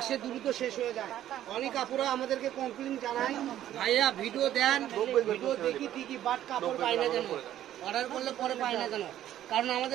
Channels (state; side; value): quieter; left; 12.2 dB